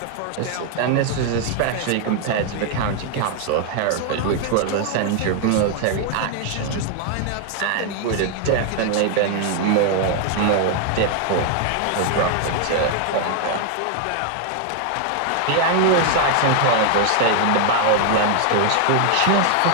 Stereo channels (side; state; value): both; different; correlation 0.00